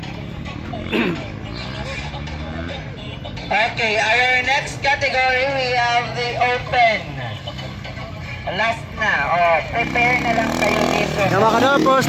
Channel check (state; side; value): identical; both; correlation 1.00